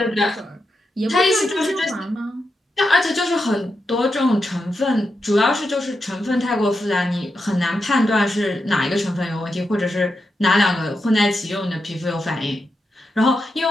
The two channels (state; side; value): normal; both; correlation 0.87